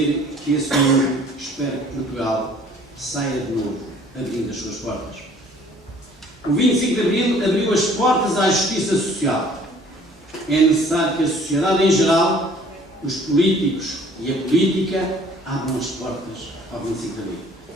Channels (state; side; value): normal; both; correlation 0.54